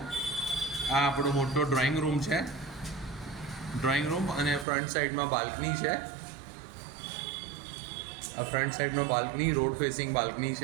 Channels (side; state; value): left; drops out; at 4.7 s